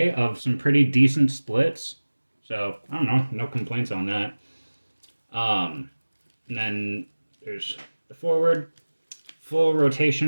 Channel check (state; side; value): inverted; both; correlation -1.00